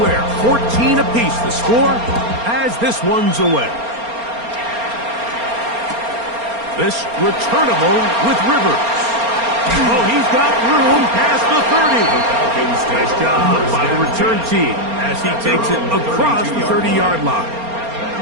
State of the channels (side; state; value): left; late; 4.3 ms